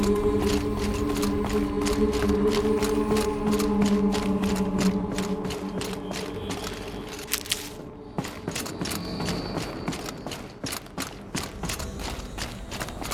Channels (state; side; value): identical; both; correlation 1.00